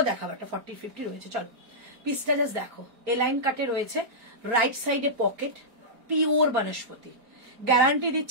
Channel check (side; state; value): left; late; 4.3 ms